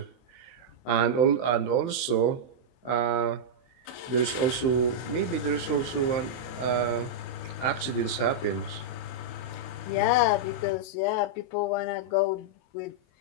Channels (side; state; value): right; late; 23 ms